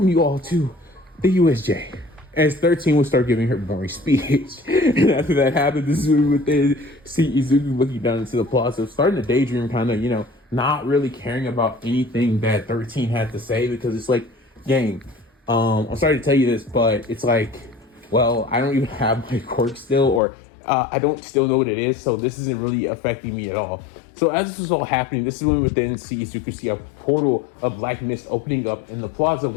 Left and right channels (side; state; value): right; drops out; at 20.2 s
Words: you all to the USJ. As 13 would start giving her boring speech. And after that happened, this is when we would then see Izuku looking down into the plaza, starting to daydream, kind of, not really caring about anything that 13 had to say, because it's like, gang, I'm sorry to tell you this, but it's like, well, I don't even have my quirk still, or I don't still know what it is, so this isn't really affecting me at all. So as this was all happening, this is when we would then see Izuku see a portal of black mist opening up in the plaza,